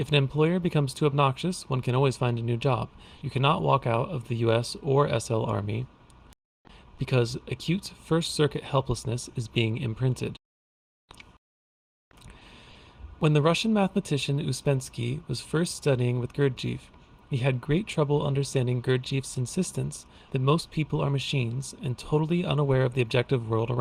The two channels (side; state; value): both; identical; correlation 1.00